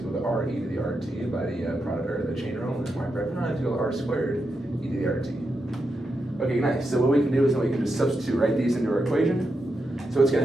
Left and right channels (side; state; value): both; normal; correlation 0.86